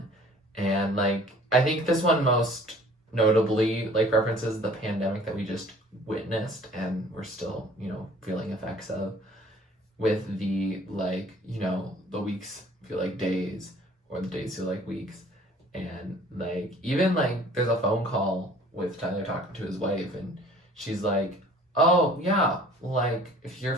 And like, I think this one most notably like references the pandemic that we just witnessed and we're still, you know, feeling effects of, with the like, you know, the weeks feel like days or the days feel like weeks. And like, even like there's a phone call with Tyler talking to his wife and she's like, oh yeah, like if you're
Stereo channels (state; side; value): normal; both; correlation 0.51